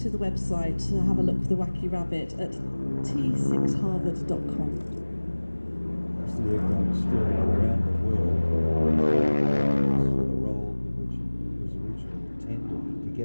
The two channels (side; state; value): both; inverted; correlation -1.00